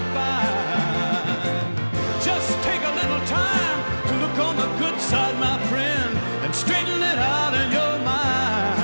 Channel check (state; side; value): inverted; both; correlation -1.00